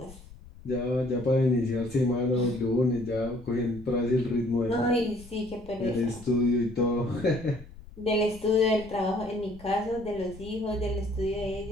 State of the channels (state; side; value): noise; left; rumble, 18 dB below the sound